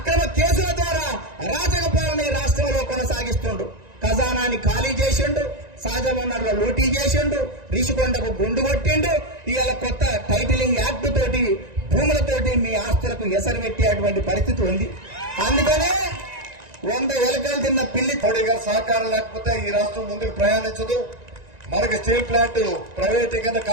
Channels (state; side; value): late; left; 1.9 ms